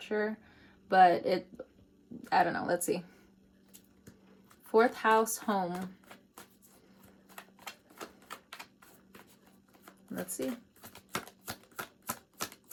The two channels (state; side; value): identical; both; correlation 1.00